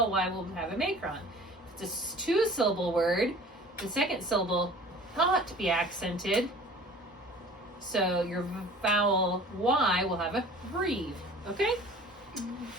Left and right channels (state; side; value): normal; both; correlation 0.45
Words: Y will have a macron. If it's a two-syllable word, the second syllable not be accented, so your vowel Y will have a breathe, okay?